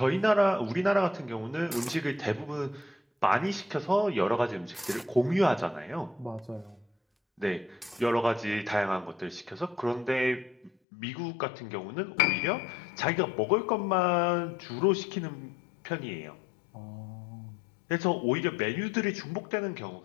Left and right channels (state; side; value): drops out; right; at 10.7 s